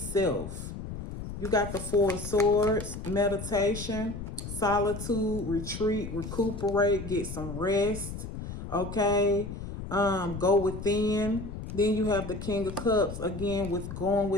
You got the Four of Swords, meditation, solitude, retreat, recuperate, get some rest. Okay. Go within. Then you have the King of Cups, again, with going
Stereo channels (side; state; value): left; noise; rumble, 8 dB below the sound